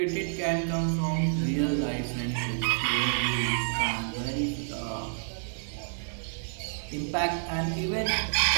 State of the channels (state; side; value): silent; left; digital silence